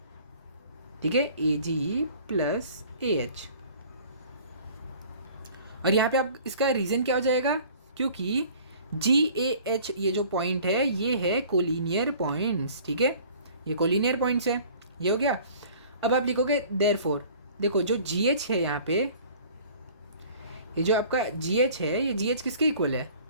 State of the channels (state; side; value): inverted; both; correlation -0.49